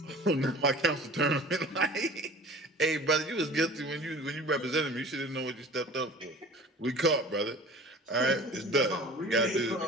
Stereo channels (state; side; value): normal; both; correlation 0.42